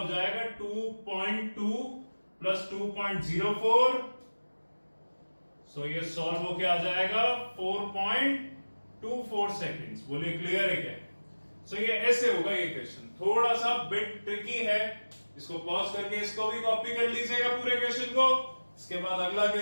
जाएगा 2.2 + 2.04। सो ये सॉल्व होके आ जाएगा 4.24 सेकेंड्स। बोलिए क्लियर है क्या? सो ये ऐसे होगा ये क्वेश्चन, थोड़ा सा बिट ट्रिकी है। इसको पॉज करके इसको भी कॉपी कर लीजिएगा पूरे क्वेश्चन को। इसके बाद अगला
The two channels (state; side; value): inverted; both; correlation -1.00